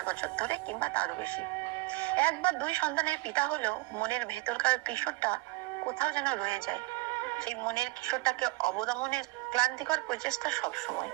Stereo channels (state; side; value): quieter; left; 23.6 dB